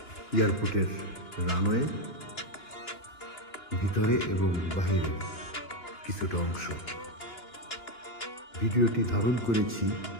এয়ারপোর্টের রানওয়ে ভিতরে এবং বাহিরে কিছুটা অংশ। ভিডিওটি ধারণ করেছি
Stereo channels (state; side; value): late; right; 2.9 ms